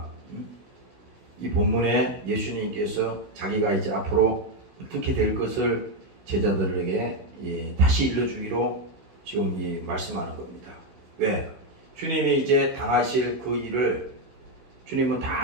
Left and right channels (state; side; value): late; left; 16 ms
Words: 이 본문에 예수님께서 자기가 이제 앞으로 어떻게 될 것을 제자들에게 다시 일러주기로 지금 이 말씀하는 겁니다. 왜? 주님이 이제 당하실 그 일을 주님은 다